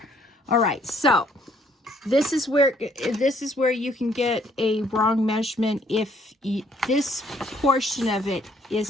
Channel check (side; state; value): both; normal; correlation 0.65